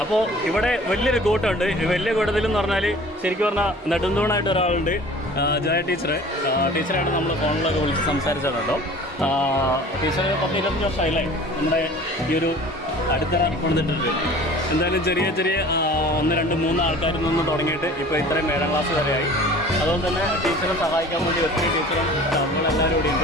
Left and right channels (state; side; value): normal; both; correlation 0.45